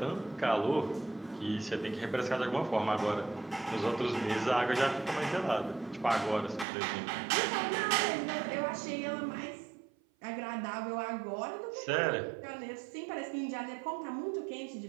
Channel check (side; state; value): left; drops out; at 6.7 s